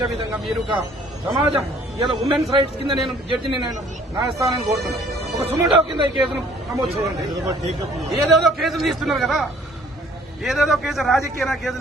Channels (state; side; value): normal; both; correlation 0.57